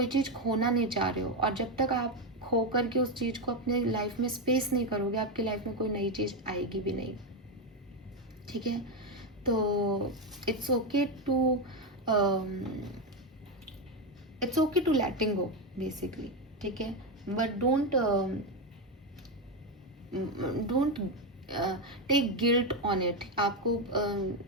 चीज़ खोना नहीं चाह रहे हो, और जब तक आप खो करके उस चीज़ को अपने लाइफ में स्पेस नहीं करोगे, आपकी लाइफ में कोई नई चीज़ आएगी भी नहीं, ठीक है। तो it's okay to letting go basically, ठीक है। But don't take guilt on it. आपको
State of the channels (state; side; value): normal; both; correlation 0.09